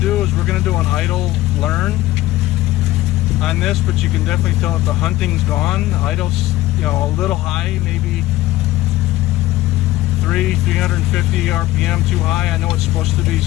is we're going to do an idle learn on this, but you can definitely tell that the hunting's gone. Idle's, you know, a little high, maybe 350 RPM too high. I know it's supposed to be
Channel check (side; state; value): right; quieter; 16.5 dB